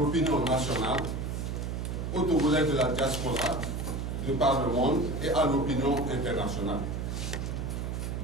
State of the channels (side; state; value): right; noise; hum, 3 dB below the sound